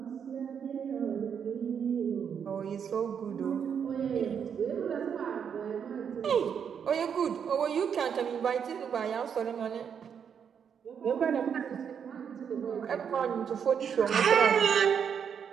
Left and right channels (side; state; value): left; quieter; 7.5 dB